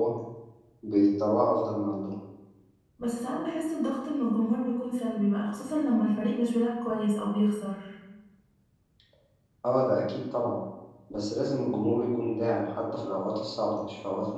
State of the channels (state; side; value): identical; both; correlation 1.00